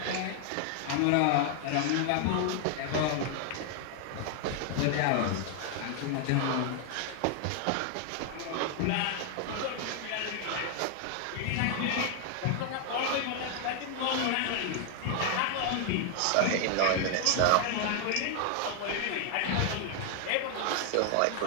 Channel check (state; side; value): different; both; correlation 0.00